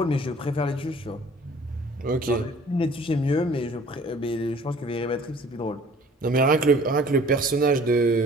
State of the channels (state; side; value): normal; both; correlation 0.52